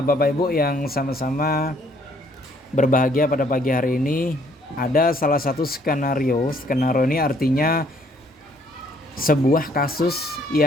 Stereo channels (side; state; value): both; normal; correlation 0.64